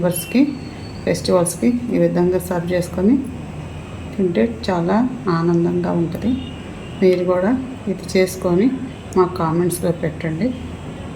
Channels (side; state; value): both; identical; correlation 1.00